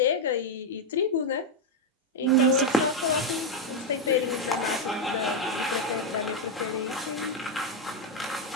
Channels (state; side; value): normal; both; correlation 0.03